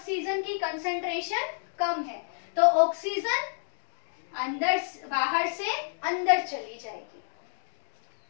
की कंसंट्रेशन कम है, तो ऑक्सीजन अंदर बाहर से अंदर चली जाएगी।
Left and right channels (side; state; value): right; silent; digital silence